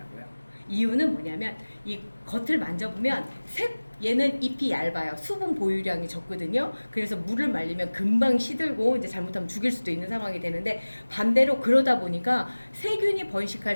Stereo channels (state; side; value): inverted; both; correlation -1.00